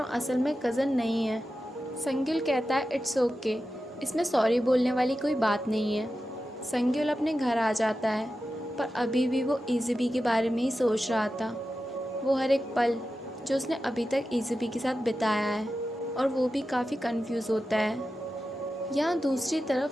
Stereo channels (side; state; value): both; normal; correlation 0.92